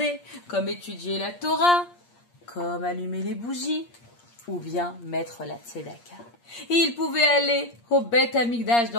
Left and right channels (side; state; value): right; late; 8.5 ms